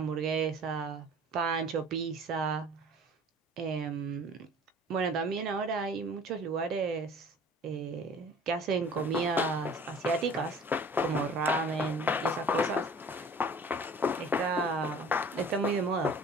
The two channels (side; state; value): both; normal; correlation 0.47